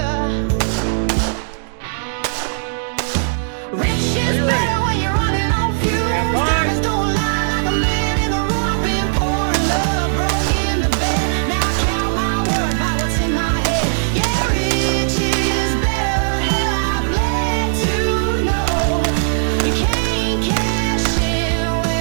Rich is better when you're running on fumes. Diamonds don't lie like a man in the room. I've been pouring love, broke in the bed. Now I count my worth by what's in my head. Yeah, rich is better. Hell, I bled to know you can't cash in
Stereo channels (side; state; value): left; silent; digital silence